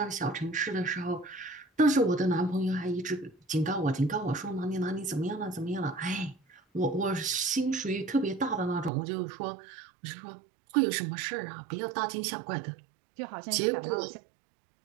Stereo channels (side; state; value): left; drops out; at 8.9 s